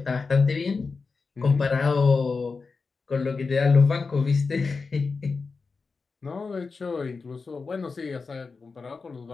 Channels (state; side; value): quieter; right; 4.5 dB